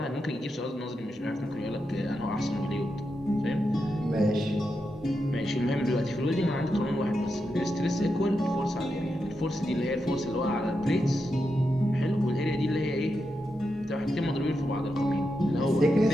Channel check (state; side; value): normal; both; correlation 0.86